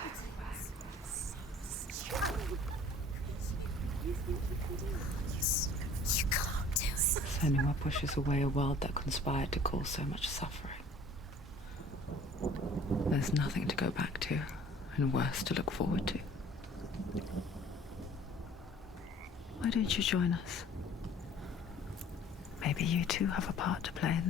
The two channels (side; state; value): both; normal; correlation 0.51